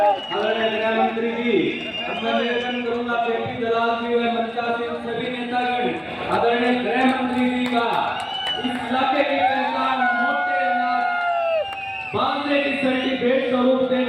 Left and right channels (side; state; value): both; identical; correlation 1.00